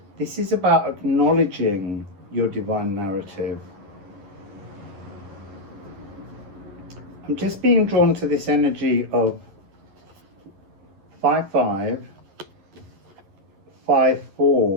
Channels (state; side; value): late; left; 11 ms